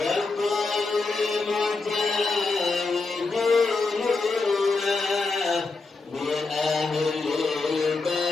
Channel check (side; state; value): right; quieter; 3.8 dB